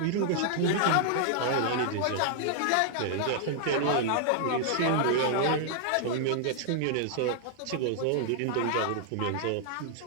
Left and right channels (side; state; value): both; different; correlation -0.01